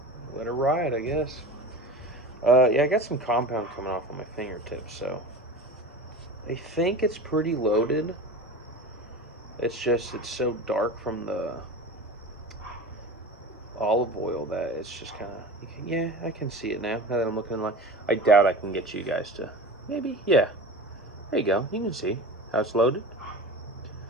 Let it ride, I guess. Yeah, I got some compound coming off on my fingertips, so I think it's pretty loaded. It's just, it's so dark from the olive oil that it's just kind of, yeah, I can see it now that I'm looking in the light. I doubt I can get you guys to, maybe, yeah. There you go. You can see how it's loaded.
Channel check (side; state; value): both; normal; correlation 0.31